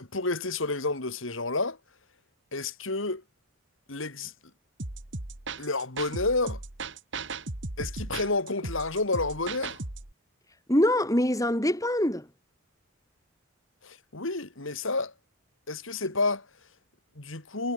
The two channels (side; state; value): both; normal; correlation 0.10